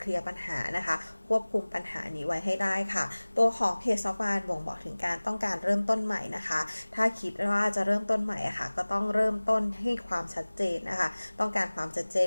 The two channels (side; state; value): both; inverted; correlation -1.00